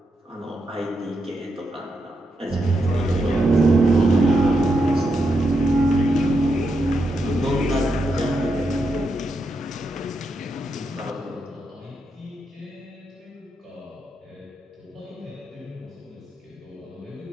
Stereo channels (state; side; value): normal; both; correlation 0.83